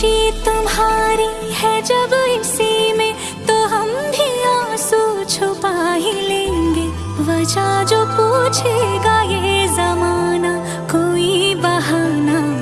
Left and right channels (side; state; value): both; identical; correlation 1.00